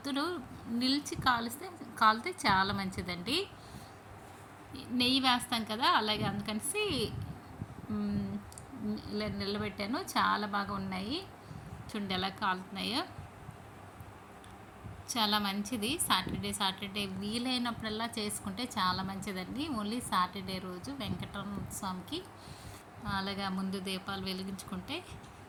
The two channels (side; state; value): both; identical; correlation 1.00